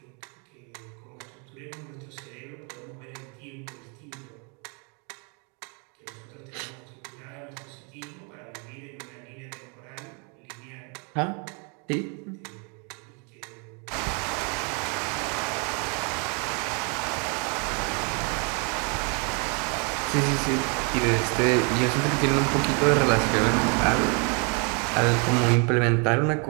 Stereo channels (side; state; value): left; quieter; 35.4 dB